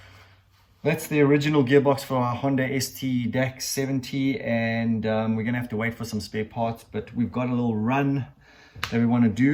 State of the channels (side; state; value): both; identical; correlation 1.00